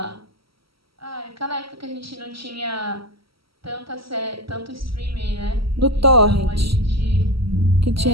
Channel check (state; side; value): late; left; 0.75 ms